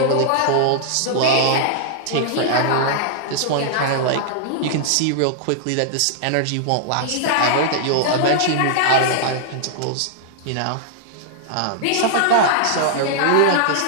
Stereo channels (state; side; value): different; both; correlation -0.01